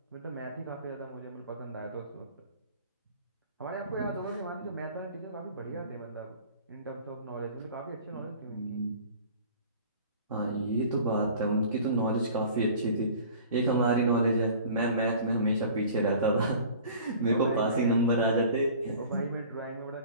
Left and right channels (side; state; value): both; inverted; correlation -0.45